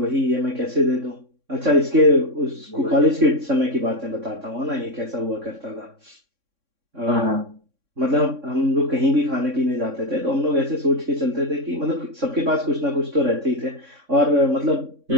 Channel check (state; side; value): late; left; 3.6 ms